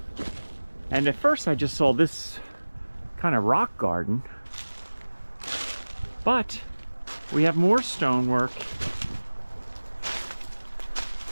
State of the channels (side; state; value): both; inverted; correlation -1.00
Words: And at first I just saw this kind of rock garden. But we have more stonework